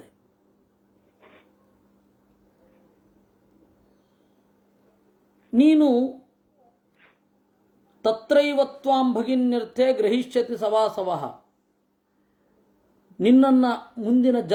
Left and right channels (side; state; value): both; identical; correlation 1.00